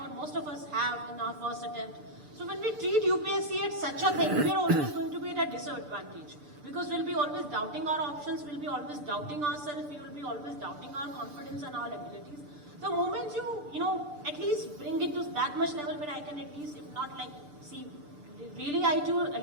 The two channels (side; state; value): left; late; 6.8 ms